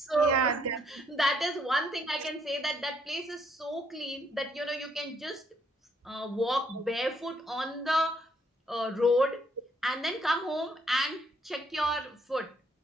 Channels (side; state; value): both; normal; correlation 0.70